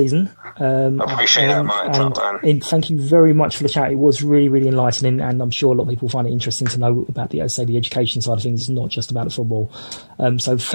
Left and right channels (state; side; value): inverted; both; correlation -1.00